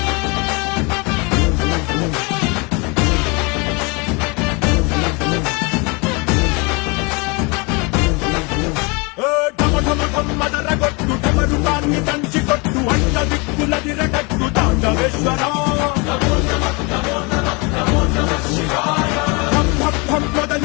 మదరగొట్టు టమరుకాన్ని దంచి కొట్టు అంట దిక్కులదిరగట్టు తాండవేశ్వర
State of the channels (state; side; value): quieter; right; 29.3 dB